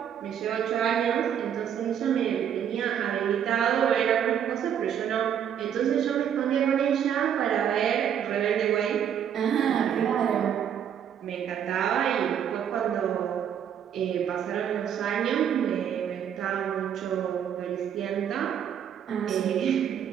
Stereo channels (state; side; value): quieter; left; 9.0 dB